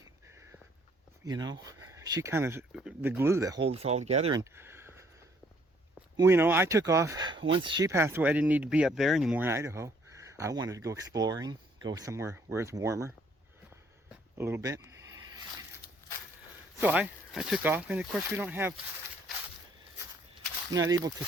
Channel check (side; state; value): both; normal; correlation 0.64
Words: you know, she kind of the glue that holds us all together. And you know, I took off once she passed away. I didn't need to be up there anymore in Idaho. I wanted to go exploring, go somewhere where it's warmer a little bit. So I took off, and of course we're not able to